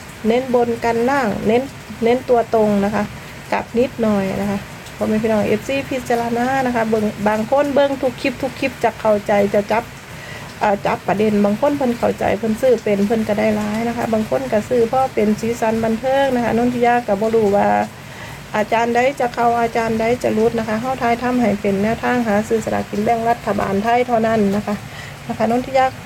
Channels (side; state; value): both; identical; correlation 1.00